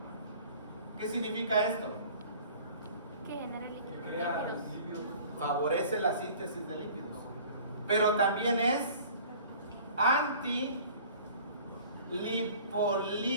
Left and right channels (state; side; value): inverted; both; correlation -0.47